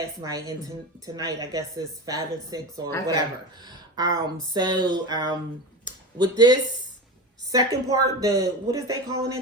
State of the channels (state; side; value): normal; both; correlation 0.24